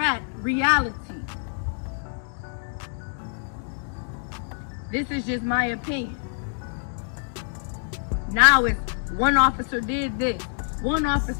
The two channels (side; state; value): right; silent; digital silence